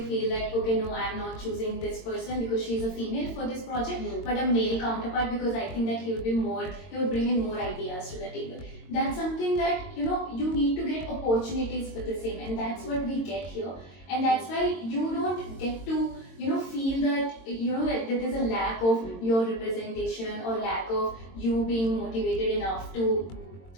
that, okay, no, I'm not choosing this person because she's a female for this project, but a male counterpart because I think that he would bring in more ideas to the table. That's something that you need to get opportunities for the same, and that's what we get here. And that's why you don't get to feel that that there's a lack of your representation or lack of you being motivated enough to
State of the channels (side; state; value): right; late; 22 ms